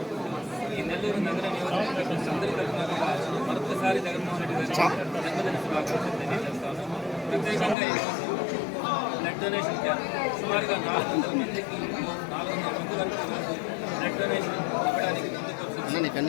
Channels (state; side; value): drops out; right; at 7.8 s